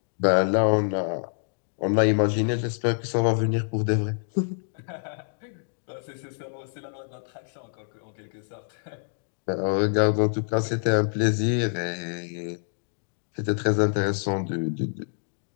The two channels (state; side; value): silent; right; digital silence